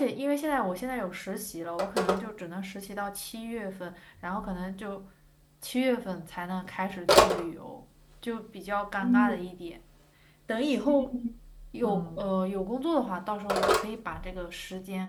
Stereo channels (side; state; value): both; identical; correlation 1.00